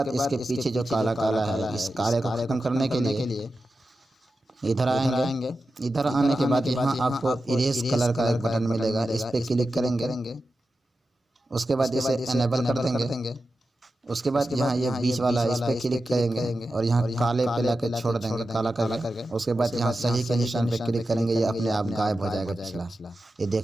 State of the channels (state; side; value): normal; both; correlation 0.91